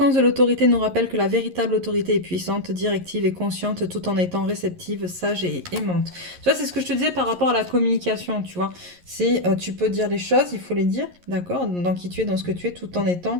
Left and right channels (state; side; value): late; left; 11 ms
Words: de l'autorité nous rappelle que la véritable autorité est puissante, directive et consciente tout en étant réceptive, sage et aimante. Tu vois, c'est ce que je te disais par rapport à la communication, tu vois. C'est, tu peux dire les choses, il faut les dire, d'accord, dans qui tu es, dans ce que tu es, tout en